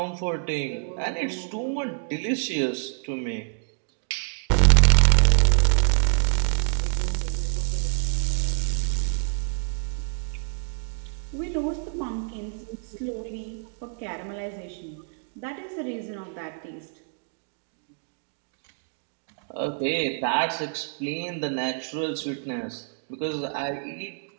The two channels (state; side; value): silent; left; digital silence